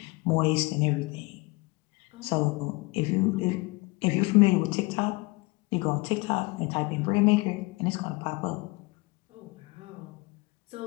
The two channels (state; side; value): quieter; right; 24.9 dB